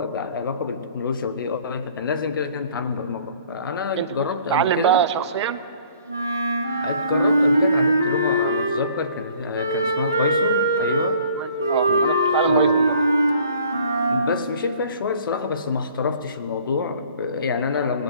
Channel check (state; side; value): inverted; both; correlation -0.55